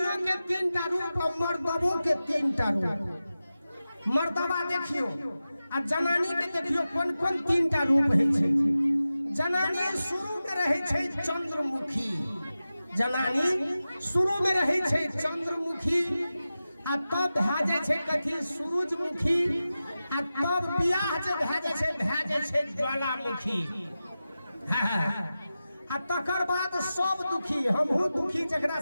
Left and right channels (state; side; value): inverted; both; correlation -0.94